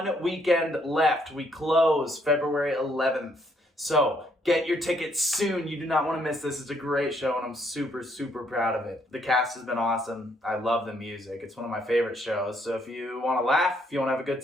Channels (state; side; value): normal; both; correlation 0.70